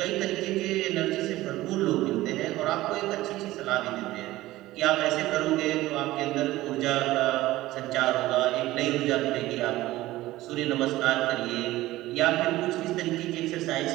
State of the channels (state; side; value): quieter; left; 16.9 dB